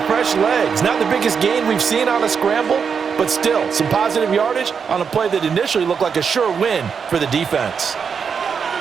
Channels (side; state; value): left; quieter; 6.3 dB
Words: fresh legs. Not the biggest gain we've seen on a scramble, but still some positive yardage on a play that initially looked like a sure win for the defense.